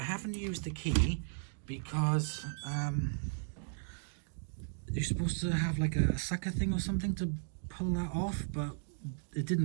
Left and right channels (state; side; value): silent; left; digital silence